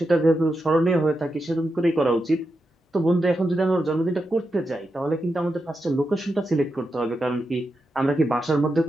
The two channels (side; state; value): both; normal; correlation 0.87